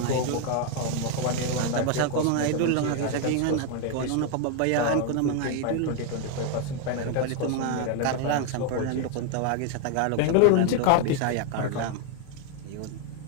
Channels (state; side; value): different; both; correlation 0.01